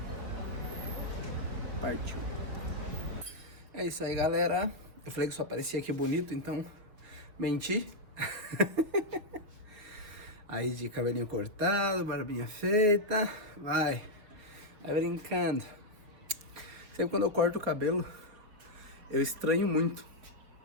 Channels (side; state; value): left; late; 4.2 ms